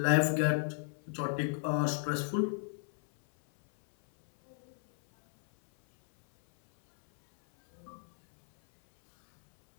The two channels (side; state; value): right; silent; 56 dB below the other